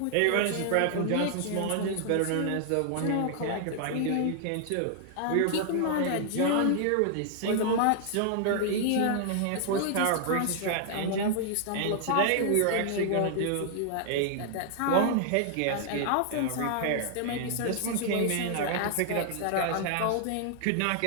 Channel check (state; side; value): different; both; correlation 0.00